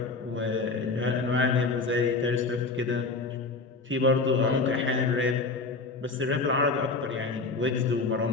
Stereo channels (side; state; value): right; quieter; 3.9 dB